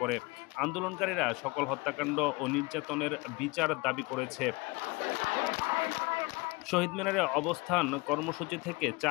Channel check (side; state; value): right; quieter; 25.1 dB